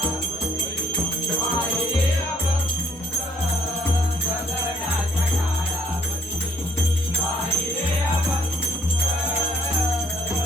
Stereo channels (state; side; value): normal; both; correlation 0.64